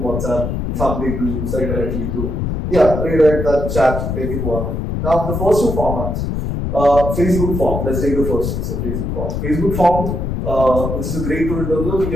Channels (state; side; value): noise; left; rumble, 2 dB below the sound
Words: some people use that directly to, rewrite that chat, make it work. Now, the first two formats, Facebook form, let's take the first one, so Facebook form. Facebook form, which is a great tool in terms of